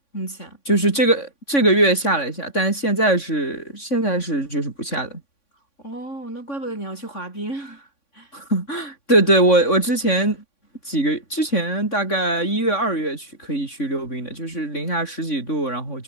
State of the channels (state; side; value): late; right; 3.6 ms